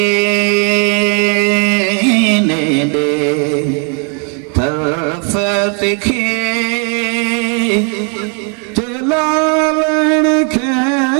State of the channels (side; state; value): left; quieter; 38.1 dB